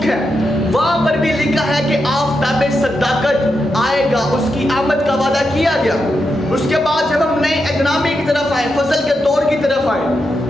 ہے، وہاں پر بھی لکھا ہے کہ آفتاب صداقت آئے گا، اس کی آمد کا وعدہ کیا گیا۔ اس کے بعد جب ہم نئے عہد نامے کی طرف آئے، فضل کے دور کی طرف آئے،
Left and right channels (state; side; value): normal; both; correlation 0.86